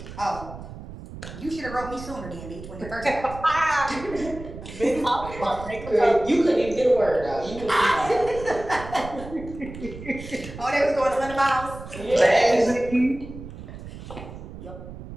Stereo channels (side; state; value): right; noise; rumble, 13 dB below the sound